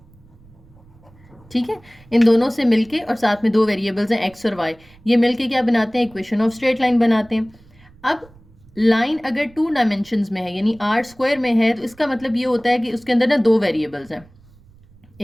ठीक है, इन दोनों से मिलके और साथ में दो वेरिएबल्स हैं x और y, ये मिलके क्या बनाते हैं, इक्वेशन ऑफ स्ट्रेट लाइन बनाते हैं। अब लाइन अगर 2 डायमेंशंस में है यानी r स्क्वायर में है, तो इसका मतलब ये होता है कि उसके अंदर ना दो वेरिएबल्स हैं,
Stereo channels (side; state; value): right; noise; rumble, 27 dB below the sound